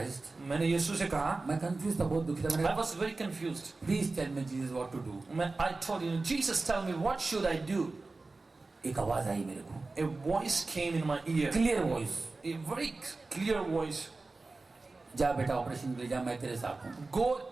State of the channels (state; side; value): quieter; left; 3.5 dB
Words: मैंने यीशु से कहा, मैं कंफ्यूज था, बहुत दुखी था. I मैंने was very confused. Please tell me Jesus what to do. I told him, Jesus, tell me what should I do? एक आवाज आई मेरे को, A voice came in my ear. Clear voice. A very clear voice. जा बेटा ऑपरेशन के लिए जा, मैं तेरे साथ हूँ. Go